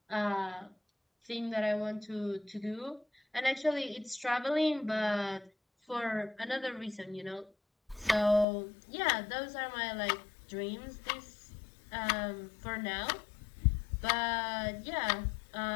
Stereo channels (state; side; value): drops out; right; at 8.5 s